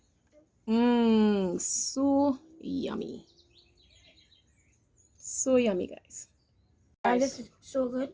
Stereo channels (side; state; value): both; identical; correlation 1.00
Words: so yummy. So yummy, guys. This is so good.